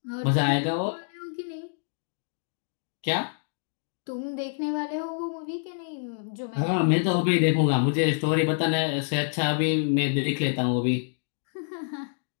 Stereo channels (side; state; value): right; silent; digital silence